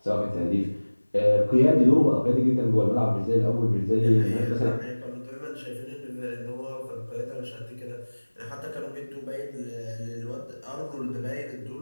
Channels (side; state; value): both; inverted; correlation -1.00